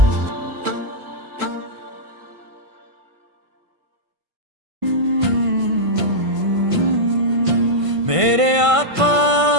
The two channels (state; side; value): late; left; 1.5 ms